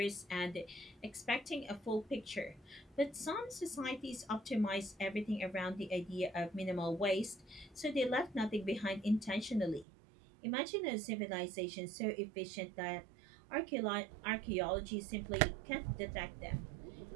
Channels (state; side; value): drops out; left; at 9.9 s